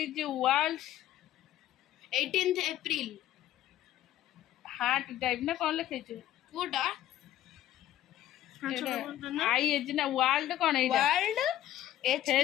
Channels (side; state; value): right; quieter; 13.0 dB